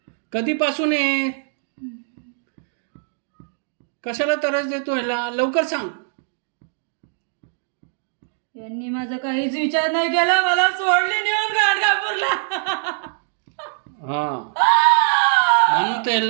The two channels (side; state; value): left; silent; digital silence